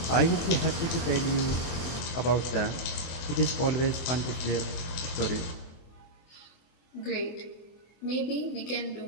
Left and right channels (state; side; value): late; right; 24 ms